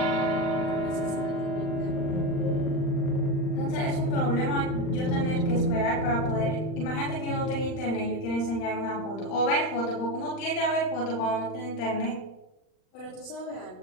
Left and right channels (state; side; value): late; right; 39 ms